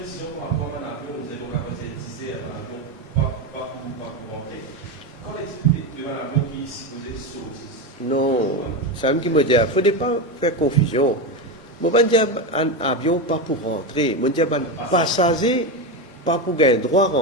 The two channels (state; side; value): normal; both; correlation 0.15